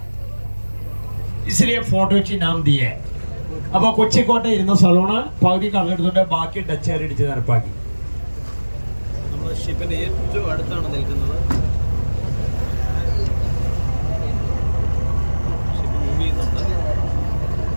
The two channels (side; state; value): both; inverted; correlation -1.00